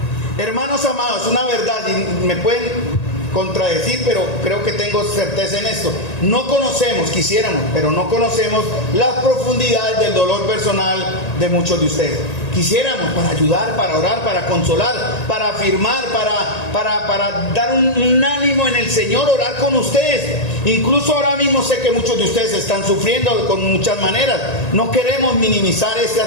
Hermanos amados, una verdad, y me pueden contradecir, pero creo que tengo certeza en esto. No conocemos, quisiéramos, pero no conocemos las profundidades del dolor personal de muchos de ustedes. Quisiéramos para ayudar, para orar, para consolar, para afirmar, para dar un ánimo en el Señor, orar con ustedes. Incluso ahora mismo sé que muchos de ustedes están sufriendo con muchas maneras. No queremos minimizar este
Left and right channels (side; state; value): right; late; 1.9 ms